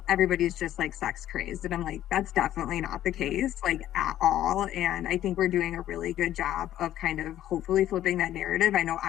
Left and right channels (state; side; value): quieter; right; 12.5 dB